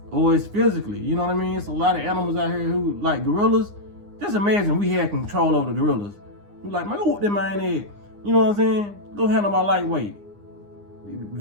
or it's physically. You know what I mean? It's a lot of animals out here who, like gorillas. Just imagine we had control over the gorillas. We're like, man, go whoop that man head. You know what I'm saying? Go handle my lightweight.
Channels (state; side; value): late; left; 9.8 ms